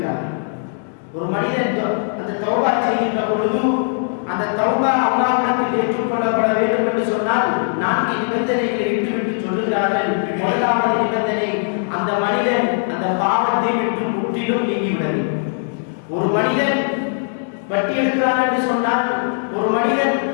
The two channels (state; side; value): silent; right; digital silence